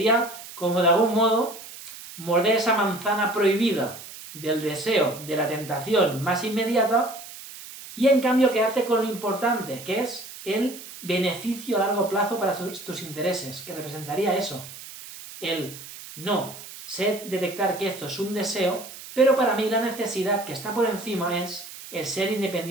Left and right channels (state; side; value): noise; right; hiss, 14 dB below the sound